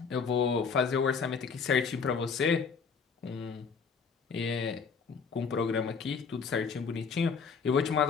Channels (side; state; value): right; quieter; 5.7 dB